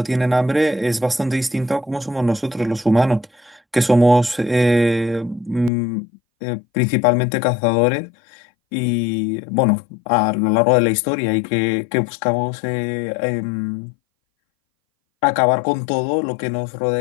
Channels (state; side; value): drops out; right; at 5.7 s